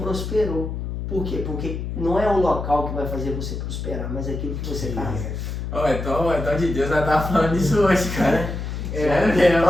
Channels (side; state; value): left; noise; hum, 5 dB below the sound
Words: Por quê? Porque não é o local que vai fazer você prosperar, mas é aquilo que você carrega. Então de Deus vai estar falando isso hoje, cara.